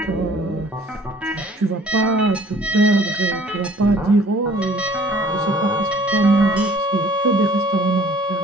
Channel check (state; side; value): normal; both; correlation 0.54